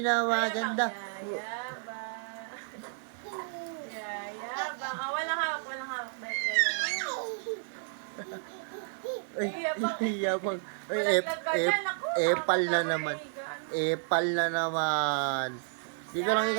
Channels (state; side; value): silent; left; digital silence